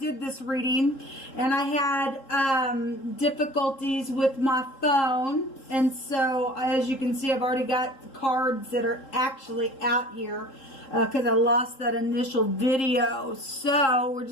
this reading and I had difficulties with my phone, and so as you can see I've already got cards that are actually out here because I lost that initial video. So we're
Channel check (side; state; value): right; late; 3.7 ms